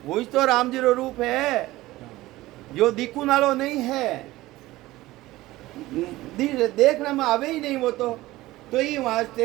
वही तो राम जी रो रूप है, जो दिखू नालो नहीं है, देखने में आवे ही नहीं वो तो ये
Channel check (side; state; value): left; quieter; 17.8 dB